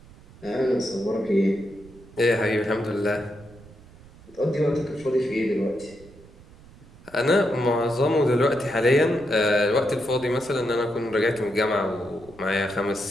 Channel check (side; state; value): right; noise; rumble, 22 dB below the sound